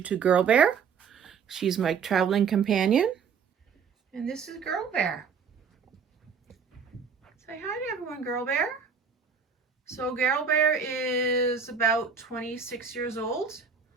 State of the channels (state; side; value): quieter; left; 6.1 dB